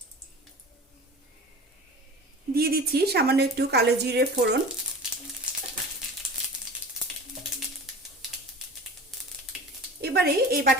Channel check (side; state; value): both; normal; correlation 0.37